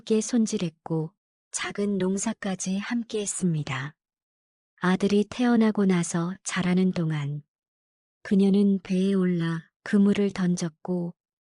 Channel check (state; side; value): identical; both; correlation 1.00